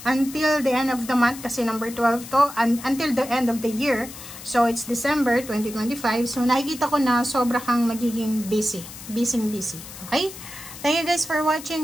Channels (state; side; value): noise; left; hiss, 14 dB below the sound